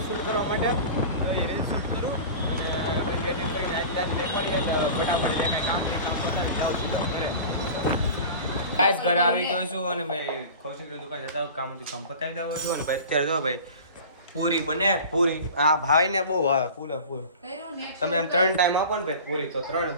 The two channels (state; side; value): inverted; both; correlation -0.37